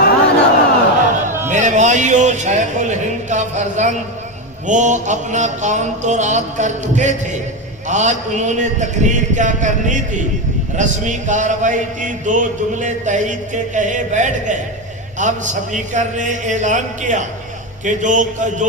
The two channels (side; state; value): both; normal; correlation 0.15